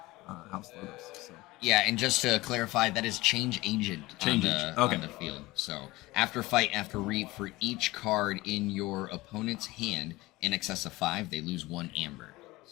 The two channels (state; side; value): quieter; right; 19.9 dB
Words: House Logos. So. Yeah, and just to clarify, that is change agent on the field. So after fight, after Reap, for each card in your opponent's hand in excess of 5, they lose 1 Amber.